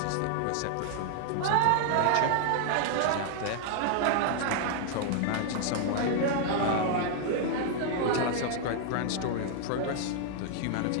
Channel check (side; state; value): both; different; correlation 0.00